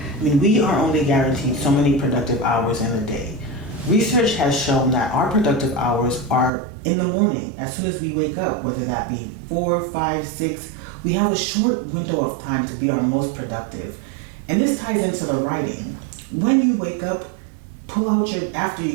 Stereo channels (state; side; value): drops out; left; at 6.5 s